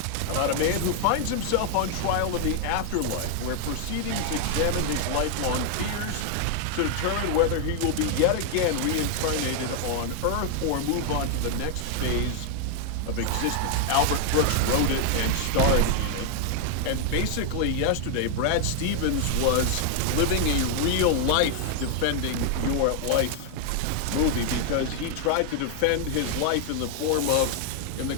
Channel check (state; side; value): different; both; correlation 0.00